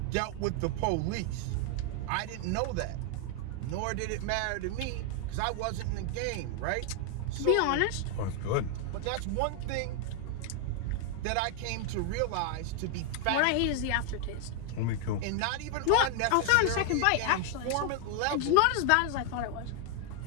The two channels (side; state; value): both; different; correlation 0.00